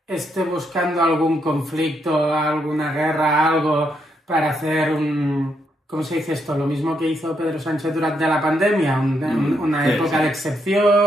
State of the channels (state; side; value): normal; both; correlation 0.78